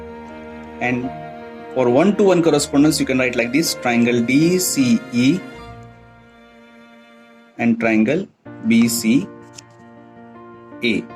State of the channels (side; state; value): both; identical; correlation 1.00